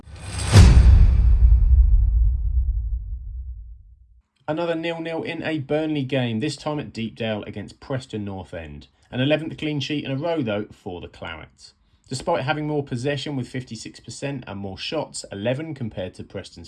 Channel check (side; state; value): both; identical; correlation 1.00